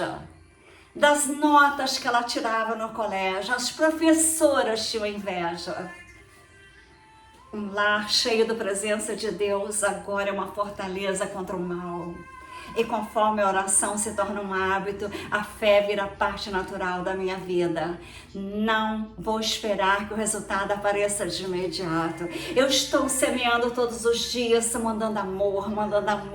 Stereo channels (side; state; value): both; identical; correlation 1.00